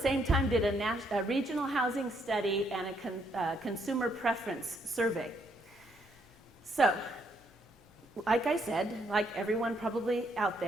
time, did a regional housing study and a consumer preference survey. So, like I said, like everyone probably out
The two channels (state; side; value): normal; both; correlation 0.72